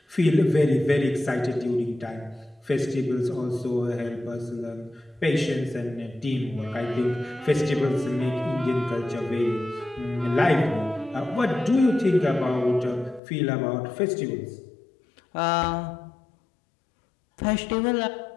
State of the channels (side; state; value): right; drops out; at 13.2 s